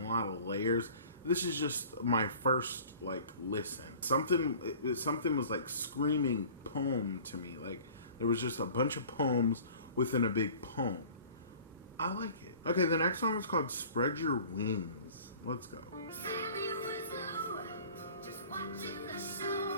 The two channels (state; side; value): inverted; both; correlation -0.46